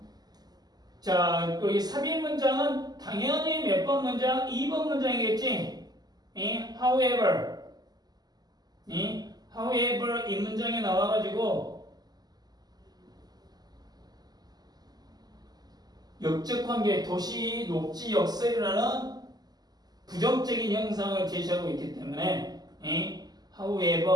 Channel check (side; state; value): left; late; 0.20 ms